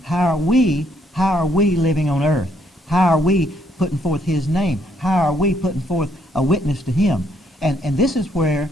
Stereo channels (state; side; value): normal; both; correlation 0.70